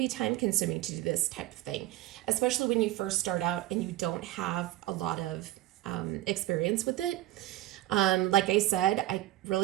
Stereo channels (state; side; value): quieter; left; 15.5 dB